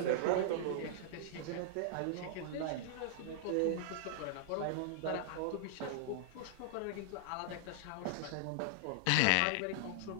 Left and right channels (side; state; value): both; different; correlation -0.01